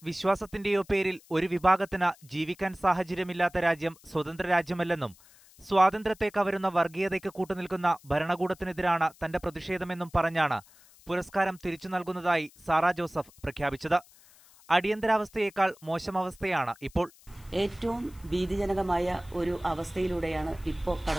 വിശ്വാസത്തിന്റെയോ പേരിൽ ഒരു വിഭാഗത്തിന് ജീവിക്കാൻ സാഹചര്യമില്ലാത്ത രാജ്യം സ്വതന്ത്ര രാജ്യമല്ലെന്നും സ്വാതന്ത്ര്യത്തെ കവരുന്ന വർഗീയതയ്ക്ക് കൂട്ടുനിൽക്കുന്ന ഭരണകൂടത്തിനെതിരാണ് തന്റെ പ്രതിഷേധമെന്നും പറഞ്ഞാണ് പുരസ്കാരം തിരിച്ചു നൽകുന്നതായി സാറാ ജോസഫ് പ്രഖ്യാപിച്ചത്. അടിയന്തരാവസ്ഥയേക്കാൾ മോശം അവസ്ഥയാണ് ഇപ്പോൾ. ഏറ്റവും ഭീതിജനകമായ ഒരു അവസ്ഥയിലൂടെയാണ് ഇപ്പോൾ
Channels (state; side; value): noise; left; hiss, 26 dB below the sound